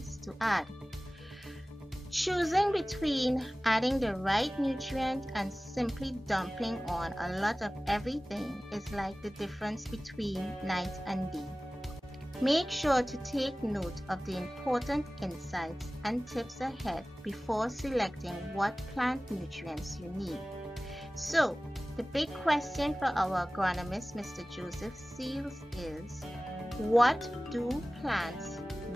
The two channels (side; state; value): both; normal; correlation 0.97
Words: to add. Choosing between adding the right nutrient and simply dumping on a lot of everything is like the difference between night and day. Make sure to take note of the important insights and tips ahead before selecting what plant nutrients you need. So, the big question for our agronomist, Mr. Joseph Seals, is what do plants